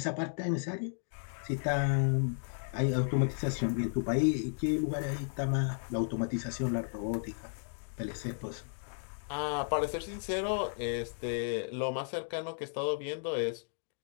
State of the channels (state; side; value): silent; right; digital silence